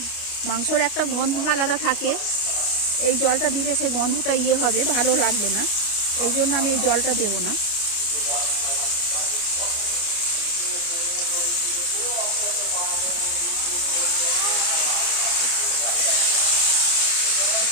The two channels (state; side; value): late; right; 29 ms